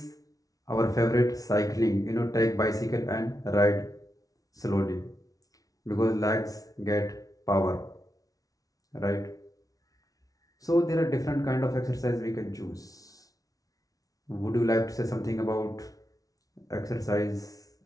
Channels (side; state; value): right; late; 0.18 ms